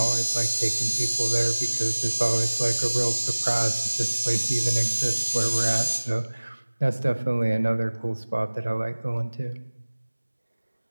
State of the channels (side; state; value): both; inverted; correlation -1.00